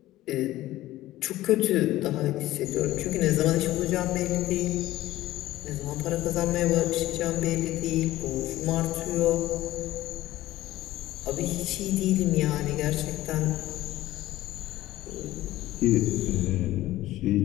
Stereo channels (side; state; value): right; quieter; 15.8 dB